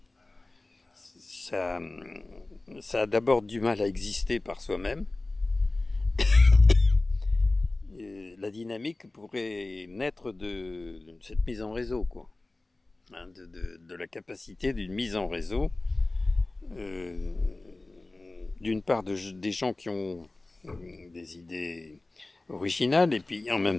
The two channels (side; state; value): right; quieter; 3.0 dB